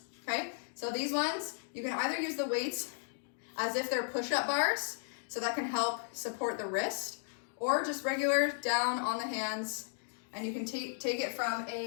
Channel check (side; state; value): right; silent; digital silence